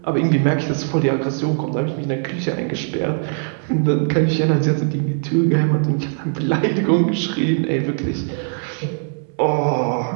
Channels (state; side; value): silent; left; 66 dB below the other